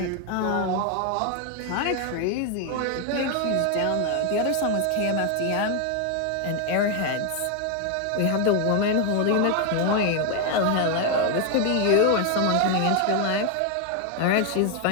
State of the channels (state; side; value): different; both; correlation 0.01